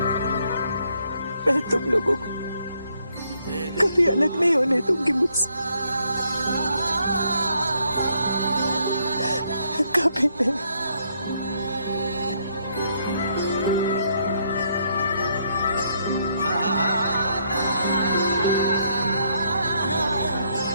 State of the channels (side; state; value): both; inverted; correlation -0.72